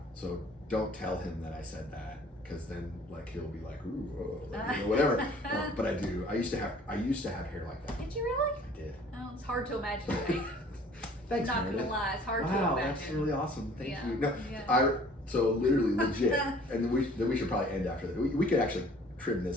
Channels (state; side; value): normal; both; correlation 0.53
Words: So don't tell him that I said that, because then like he'll be like, ooh, you know, whatever. But I do. I used to have hair like that. Did you really? I did. Oh, it's hard to imagine. Right? Thanks, Not Meredith. gonna lie, it's hard to Wow, imagine. that's really awesome. Thank Yeah, you. No, yeah. so literally legit, and then we should probably end after that. We could actually trim